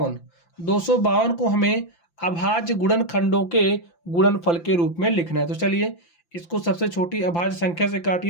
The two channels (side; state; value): right; late; 5.8 ms